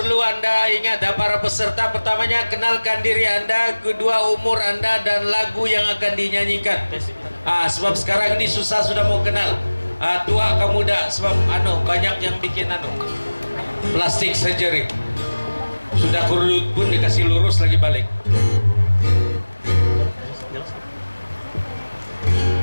Anda ingat ya, para peserta. Pertamanya, kenalkan diri Anda, kedua umur Anda, dan lagu yang akan dinyanyikan. Sebab sekarang ini susah sudah mau kenal. Tua ke muda, sebab banyak yang bikin plastik surgery. Sudah kurut pun dikasih lurus lagi balik.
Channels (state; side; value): inverted; both; correlation -1.00